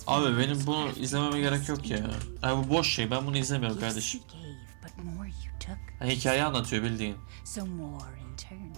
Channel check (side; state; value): left; silent; digital silence